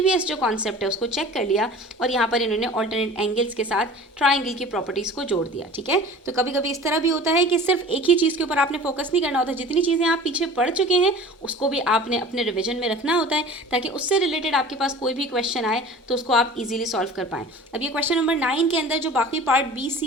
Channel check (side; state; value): both; normal; correlation 0.41